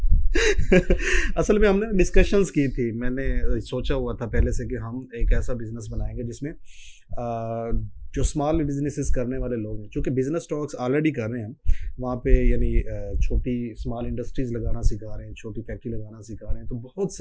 असल में हमने डिस्कशंस की थी, मैंने सोचा हुआ था पहले से कि हम एक ऐसा बिजनेस बनाएंगे जिसमें जो स्मॉल बिजनेसेस करने वाले लोग हैं, चूँकि बिजनेस टॉक्स ऑलरेडी कर रहे हैं हम वहाँ पे, यानी छोटी स्मॉल इंडस्ट्रीज़ लगाना सिखा रहे हैं, छोटी फैक्ट्री लगाना सिखा रहे हैं, तो बहुत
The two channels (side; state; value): both; identical; correlation 1.00